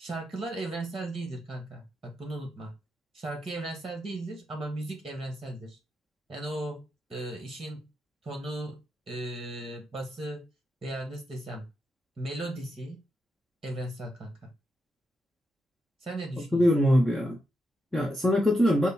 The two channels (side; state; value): both; normal; correlation 0.85